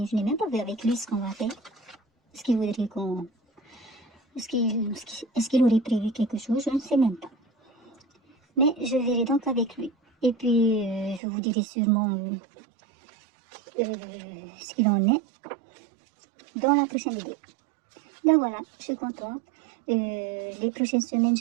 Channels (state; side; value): drops out; left; at 11.2 s